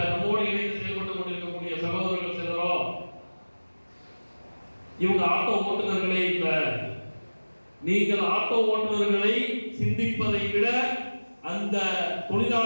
நம்மோடு இணைந்து செயல்பட்டு கொண்டிருக்கக்கூடிய சகோதரர்கள் சிலரோ இவங்க ஆட்டோ ஓட்டுநர்களே இல்ல, நீங்கள் ஆட்டோ ஓட்டுநர்களை சிந்திப்பதை விட அந்த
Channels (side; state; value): both; inverted; correlation -1.00